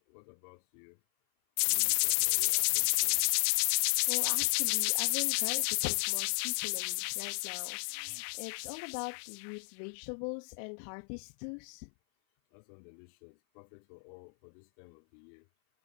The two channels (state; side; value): silent; right; 55 dB below the other